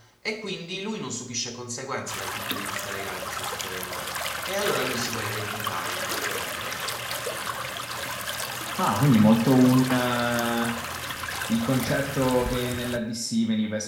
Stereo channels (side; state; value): both; identical; correlation 1.00